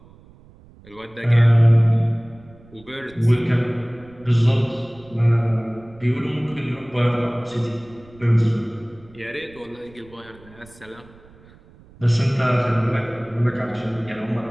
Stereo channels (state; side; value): noise; right; rumble, 25 dB below the sound